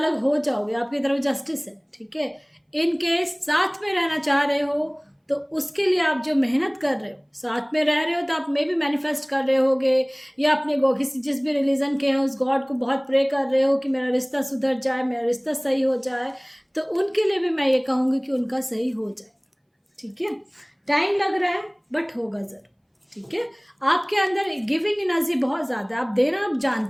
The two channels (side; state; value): both; identical; correlation 1.00